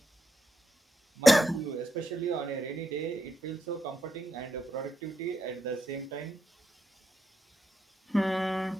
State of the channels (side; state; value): both; normal; correlation 0.82